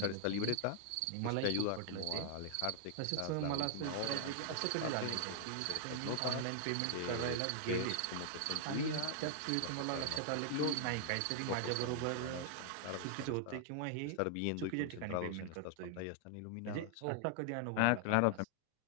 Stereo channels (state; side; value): different; both; correlation 0.00